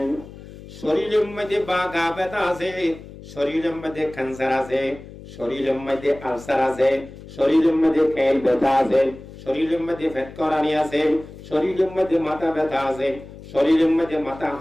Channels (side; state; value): left; noise; hum, 16 dB below the sound